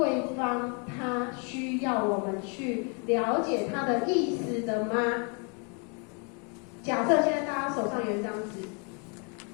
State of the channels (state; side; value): quieter; right; 36.7 dB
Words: 方他需要我们去了解他的意思的吗？假设现在大家手上有一张纸，